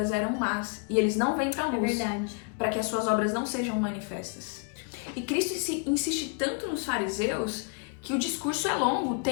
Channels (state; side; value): quieter; right; 35.4 dB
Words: eram más, e eles não vêm para a luz, para que as suas obras não sejam manifestas. E Cristo insiste tanto nos fariseus que o discurso é longo,